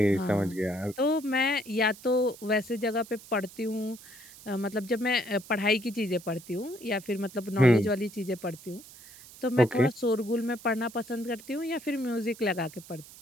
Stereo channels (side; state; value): right; noise; hiss, 19 dB below the sound